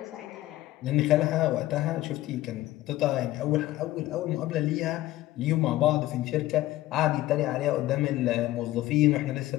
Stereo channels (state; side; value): quieter; right; 16.1 dB